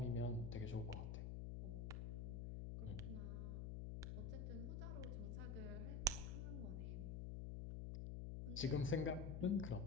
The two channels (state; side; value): noise; left; hum, 2 dB below the sound